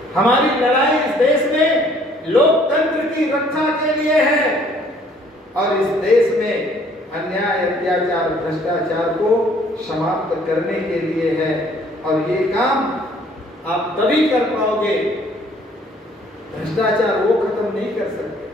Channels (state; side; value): normal; both; correlation 0.59